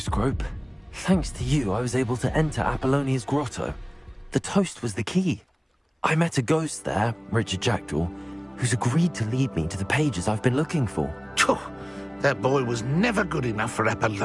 Thanks to you, I was able to enter Apollonia's grotto. The toast was the key. I met a ghost there, Richard Jackdaw, who's agreed to lead me to the pages I've been looking for. That boy was never good enough for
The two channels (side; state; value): both; identical; correlation 1.00